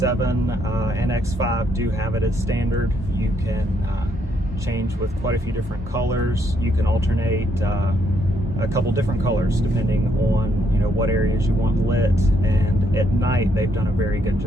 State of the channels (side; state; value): both; normal; correlation 0.73